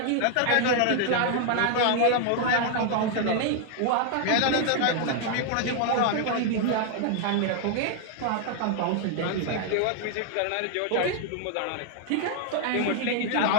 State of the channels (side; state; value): both; different; correlation 0.00